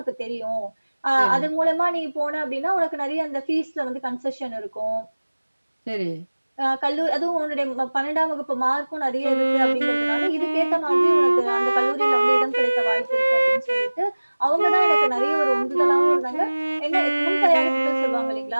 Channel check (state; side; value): inverted; both; correlation -1.00